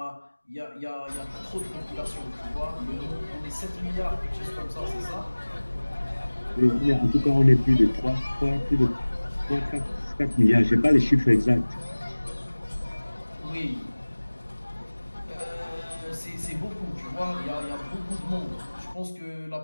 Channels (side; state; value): both; inverted; correlation -1.00